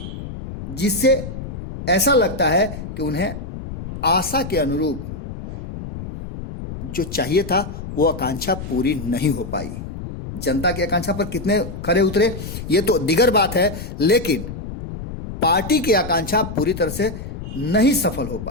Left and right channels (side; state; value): left; noise; rumble, 9 dB below the sound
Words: जिससे ऐसा लगता है कि उन्हें आशा के अनुरूप जो चाहिए था वो आकांक्षा पूरी नहीं हो पाई। जनता की आकांक्षा पर कितने खरे उतरे ये तो दिगर बात है, लेकिन पार्टी की आकांक्षा पूरी तरह से नहीं सफल हो